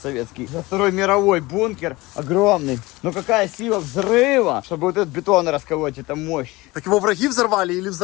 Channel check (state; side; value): quieter; right; 21.2 dB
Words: За Второй мировой бункер огромный. Но какая сила взрыва, чтобы вот этот бетон расколоть, это мощь. Так его враги взорвали или